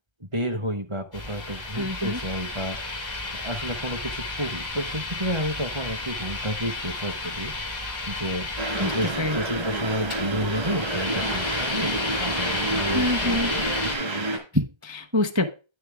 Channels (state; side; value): late; left; 1.3 ms